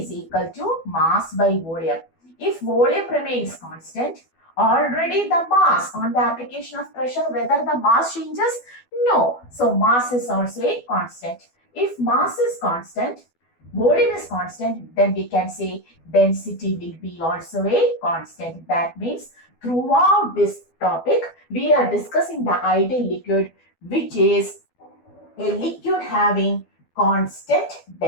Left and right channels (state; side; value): late; right; 12 ms